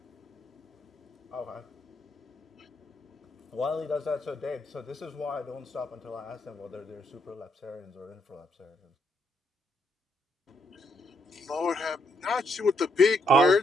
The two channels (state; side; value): normal; both; correlation 0.75